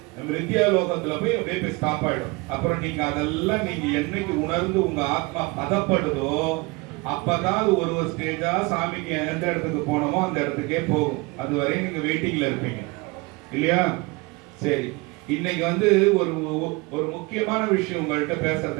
மிருத்தியா லோகத்துல போய் அப்படியே போய் ஸ்டாப் ஆயிடும். அப்புறம் நீங்க அதெல்லாம் நீங்க என்னைக்கு உணர்ந்து உங்க ஆத்மா பதப்படுதோ அப்பதான் ஒரு ஸ்டேஜா சாமிக்கு எந்த இடத்துக்கு போனோமோ அந்த இடத்துக்கே போகும். அது வரை நீங்க வெயிட்டிங்ல இருப்பீங்க இல்லையா? சரி, இன்னைக்கு வந்து ஒரு முக்கியமான விஷயம் உங்கள்கிட்ட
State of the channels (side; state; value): left; quieter; 25.6 dB